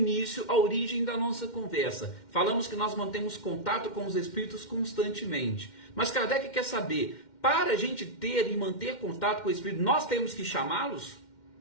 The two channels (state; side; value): late; right; 2.1 ms